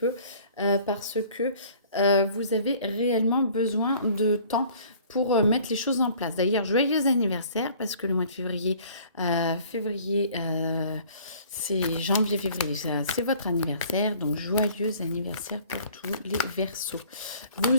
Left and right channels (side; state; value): both; inverted; correlation -0.52